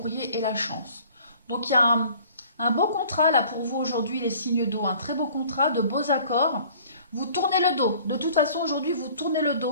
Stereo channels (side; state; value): both; inverted; correlation -0.51